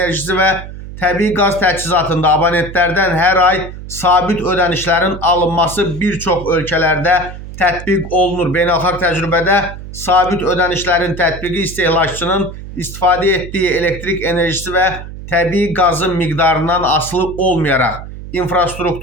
və təbii qaz təchizatında abonentlərdən hər ay sabit ödənişlərin alınması bir çox ölkələrdə tətbiq olunur. Beynəlxalq təcrübədə sabit ödənişlərin tətbiqi istehlakçının istifadə etdiyi elektrik enerjisi və təbii qazın miqdarından asılı olmayaraq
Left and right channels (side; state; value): right; noise; hum, 12 dB below the sound